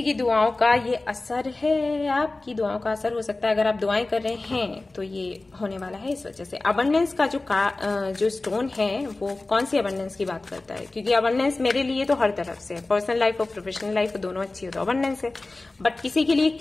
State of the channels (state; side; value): quieter; right; 3.1 dB